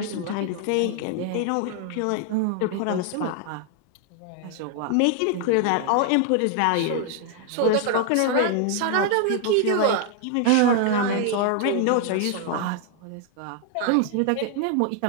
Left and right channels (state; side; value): different; both; correlation 0.00